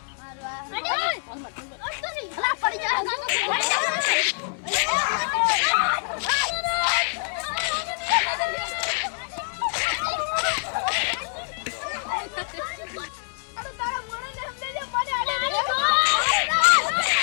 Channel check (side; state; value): right; silent; 62 dB below the other